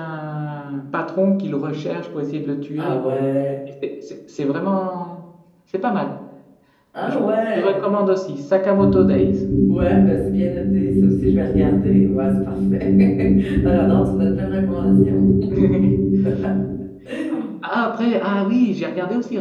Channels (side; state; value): both; identical; correlation 1.00